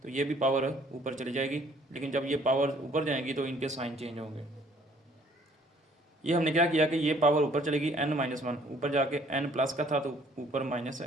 तो ये भी पावर ऊपर चली जाएगी। लेकिन जब ये पावर ऊपर जाएगी तो इनके साइन चेंज होंगे। ये हमने क्या किया कि ये पावर ऊपर चलेगी n-1, ऊपर जाके n प्लस का था तो ऊपर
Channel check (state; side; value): normal; both; correlation 0.59